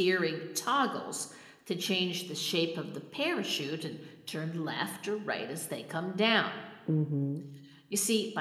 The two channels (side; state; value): both; identical; correlation 1.00